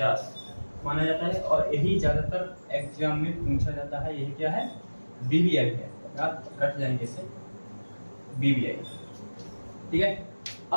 माना जाता है। और यही ज्यादातर एग्जाम में पूछा जाता है। यही क्या है? BBI है। याद रख जाएंगे इसे, BBI। ठीक है।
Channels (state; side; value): inverted; both; correlation -1.00